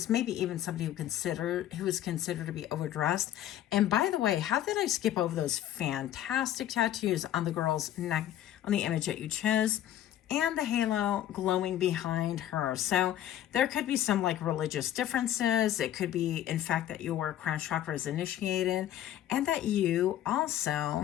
maybe even somebody who is considered to be overdressed. And by the way, how did I skip over those fantastic tattoos on the girl's neck, on the image that you chose? And the halo glowing behind her. So there could be some like religious differences. It could be, in fact, that your crown chakra is initiated, and that you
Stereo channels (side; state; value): right; quieter; 12.0 dB